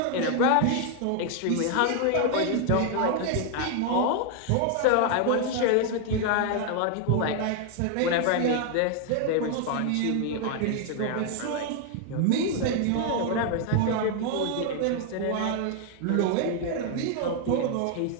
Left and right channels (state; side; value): different; both; correlation 0.00